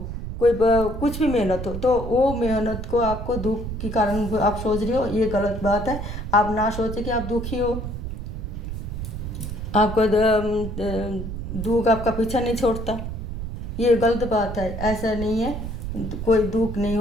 कोई कुछ भी मेहनत हो, तो वो मेहनत को आपको दुख के कारण आप सोच रहे हो, ये गलत बात है। आप ना सोचे कि आप दुखी हो, आपको दुख आपका पीछा नहीं छोड़ता, ये गलत बात है। ऐसा नहीं है, कोई दुख नहीं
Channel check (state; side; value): noise; right; rumble, 6 dB below the sound